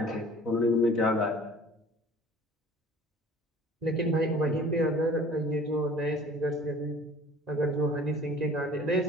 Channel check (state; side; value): normal; both; correlation 0.48